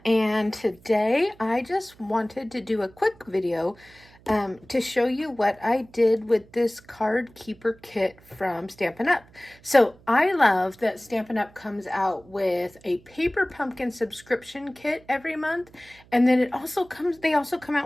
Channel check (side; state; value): right; noise; hum, 26 dB below the sound